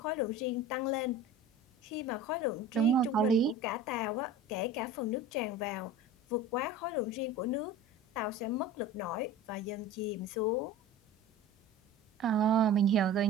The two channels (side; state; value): both; normal; correlation 0.37